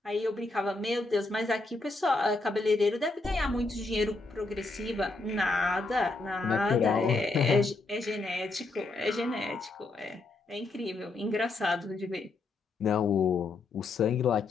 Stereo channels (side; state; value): right; quieter; 3.4 dB